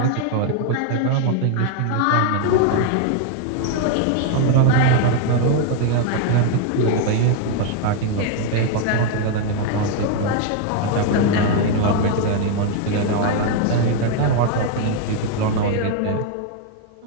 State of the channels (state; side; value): different; both; correlation 0.01